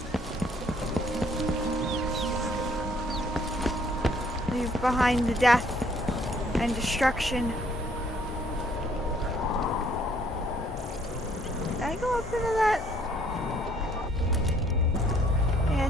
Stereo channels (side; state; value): both; normal; correlation 0.63